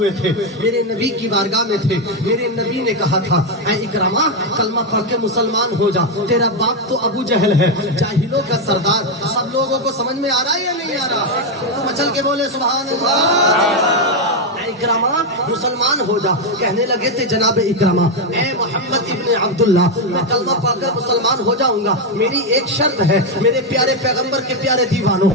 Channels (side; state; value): both; normal; correlation 0.04